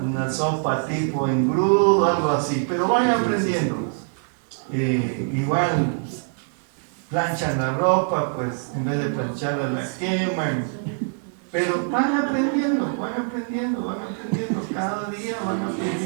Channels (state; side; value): silent; left; 63 dB below the other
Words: sopa tipo engrudo, algo así, pero van aprendiendo. Igual planchan la ropa, pues en vez de plancharla la queman, pero van aprendiendo, cada día van